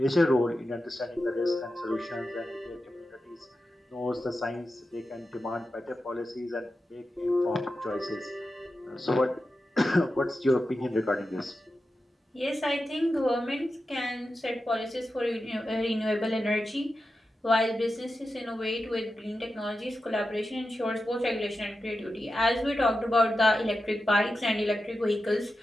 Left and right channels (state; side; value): normal; both; correlation 0.91